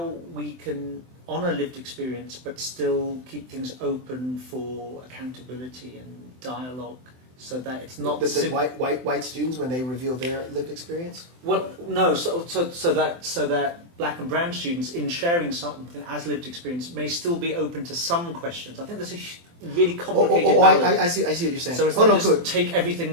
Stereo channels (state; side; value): late; left; 24 ms